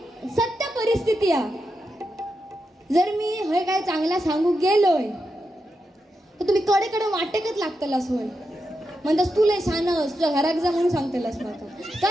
सत्य परिस्थिती आहे. जर मी हे काय चांगला सांगू गेलोय तर तुम्ही कडे कडे वाटेकच लागतलास होय. म्हणतास तू लय शानस, तुझ्या घरात जा म्हणून सांगतेलास माका.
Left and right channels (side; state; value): both; normal; correlation 0.87